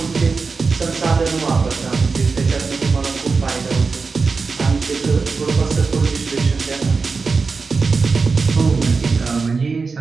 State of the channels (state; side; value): quieter; left; 4.6 dB